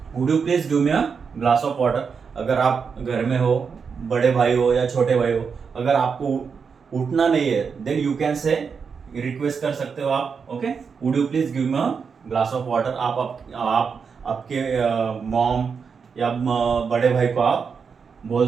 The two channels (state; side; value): quieter; left; 5.9 dB